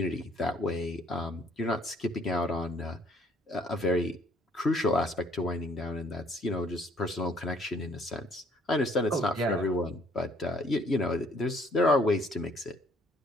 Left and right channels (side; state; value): both; normal; correlation 0.62